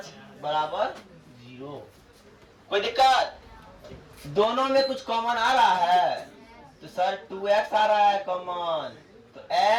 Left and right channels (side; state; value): both; identical; correlation 1.00